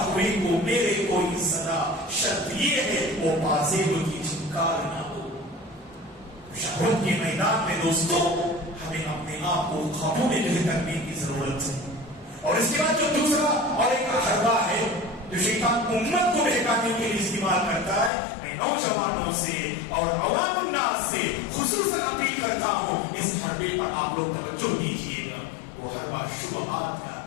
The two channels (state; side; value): drops out; right; at 18.1 s